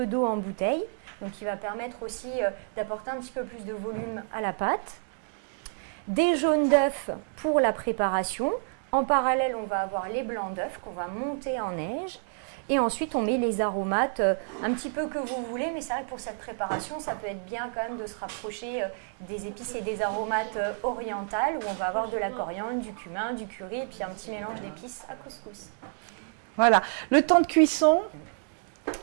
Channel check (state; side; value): silent; left; 58 dB below the other